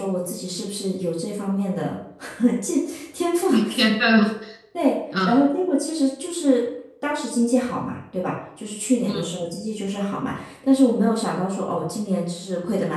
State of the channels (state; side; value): identical; both; correlation 1.00